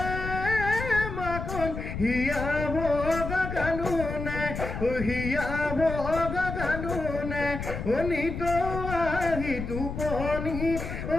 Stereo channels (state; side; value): noise; left; rumble, 6 dB below the sound